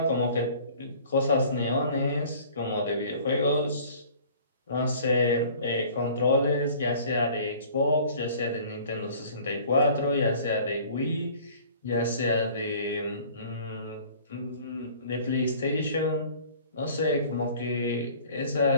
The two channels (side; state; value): both; inverted; correlation -0.49